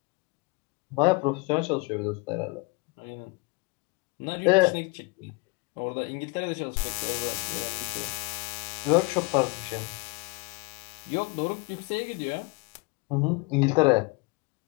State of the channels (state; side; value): quieter; right; 26.8 dB